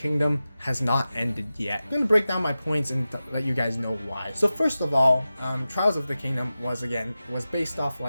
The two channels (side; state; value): both; inverted; correlation -0.94